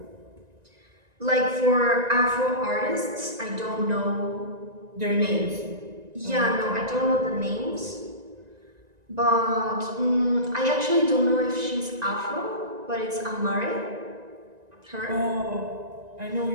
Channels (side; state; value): left; late; 1.9 ms